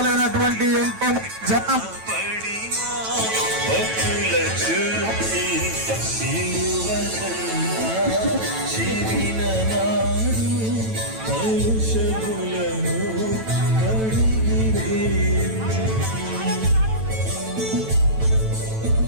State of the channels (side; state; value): left; late; 9.1 ms